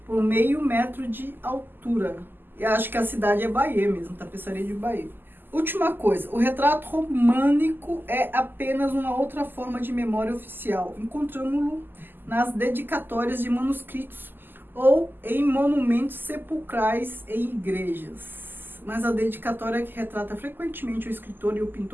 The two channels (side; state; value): left; late; 0.093 ms